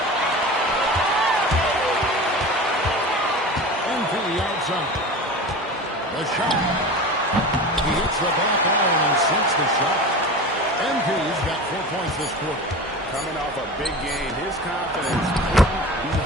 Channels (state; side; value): normal; both; correlation 0.32